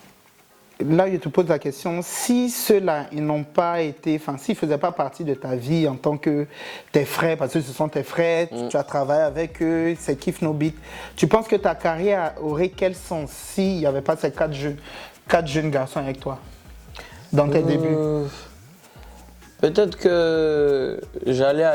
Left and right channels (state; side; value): identical; both; correlation 1.00